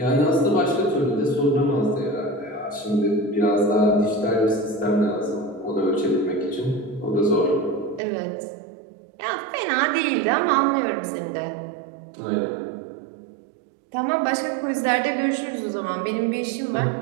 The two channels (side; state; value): left; drops out; at 8.0 s